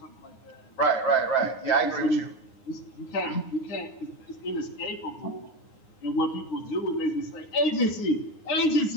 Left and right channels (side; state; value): right; late; 9.7 ms